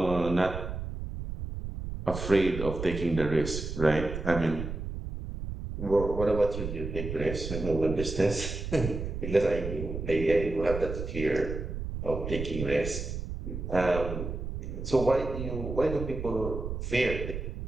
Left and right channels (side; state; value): right; noise; rumble, 6 dB below the sound